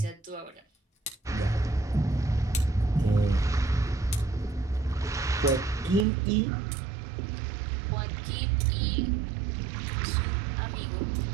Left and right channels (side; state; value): left; drops out; at 6.1 s